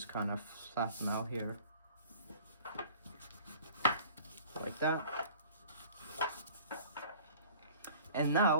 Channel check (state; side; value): inverted; both; correlation -0.48